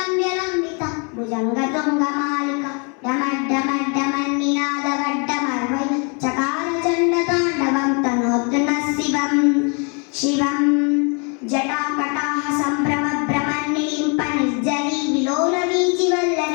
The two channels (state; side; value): quieter; right; 35.6 dB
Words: भुजङ्गतुङ्गमालिका डमड्डमड्डमन्निनादवड्डमर्वै चकार चण्डताण्डवं तनोतु नः शिवं जटाकटाह सम्भ्रमभ्रमन्निलिम्प निर्जरी